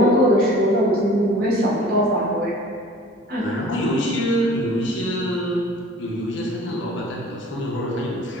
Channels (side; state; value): both; normal; correlation 0.46